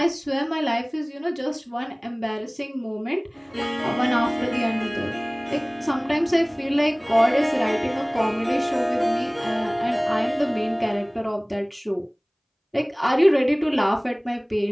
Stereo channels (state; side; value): identical; both; correlation 1.00